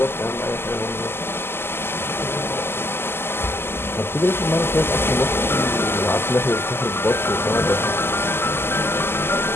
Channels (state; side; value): late; right; 0.11 ms